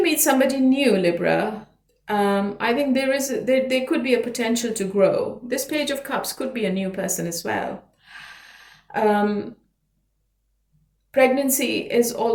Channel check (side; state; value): both; identical; correlation 1.00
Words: meet somebody new, Libra, I think there could be a potential to grow. This Page of Cups could be a new person as well. Pregnancy is